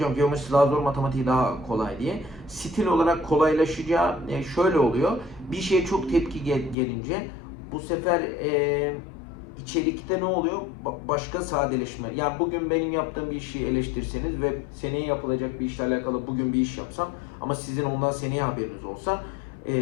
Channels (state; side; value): drops out; right; at 6.8 s